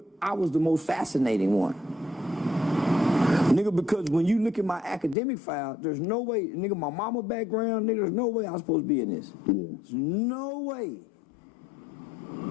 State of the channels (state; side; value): drops out; right; at 5.2 s